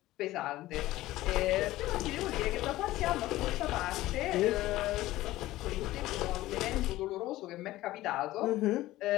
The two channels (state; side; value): quieter; right; 16.5 dB